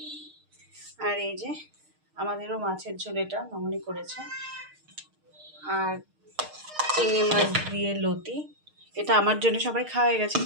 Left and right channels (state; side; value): late; left; 6.5 ms